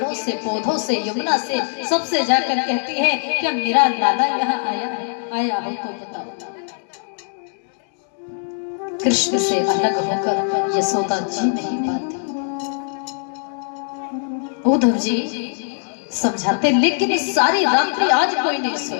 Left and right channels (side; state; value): right; silent; digital silence